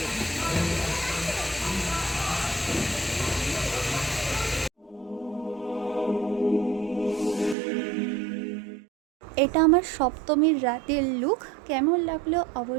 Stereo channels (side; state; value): left; drops out; at 7.6 s